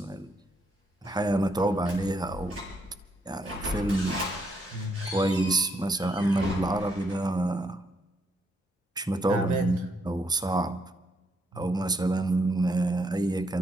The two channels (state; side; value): normal; both; correlation 0.75